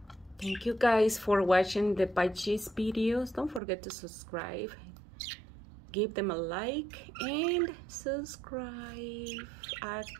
Thank you guys for watching the Budgies videos. Don't forget to subscribe. Give them a like and subscribe.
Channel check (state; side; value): drops out; left; at 3.6 s